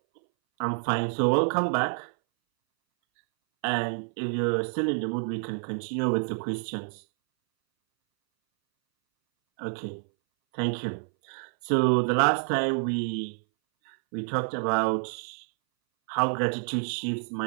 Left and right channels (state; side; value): silent; left; 59 dB below the other